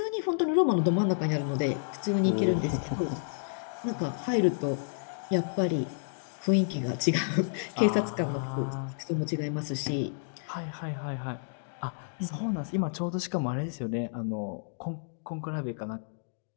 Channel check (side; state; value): right; silent; digital silence